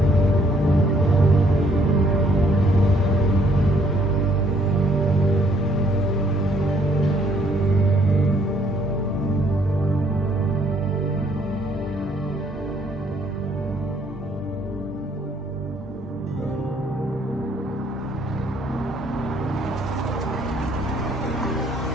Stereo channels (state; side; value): normal; both; correlation 0.65